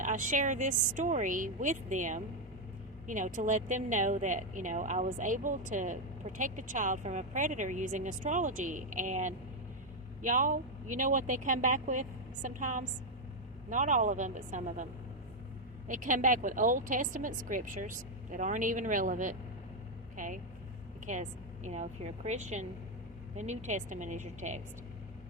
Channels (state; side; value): normal; both; correlation 0.03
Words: share this story with them to let them know that, I was able to protect a child from a predator using astrology. And y'all, you know what they come back with sometimes? Not all of them, but some of them. They come back with Old Testament scriptures that aren't even relevant, okay? Because, if you're a Christian, the New Testament is your text.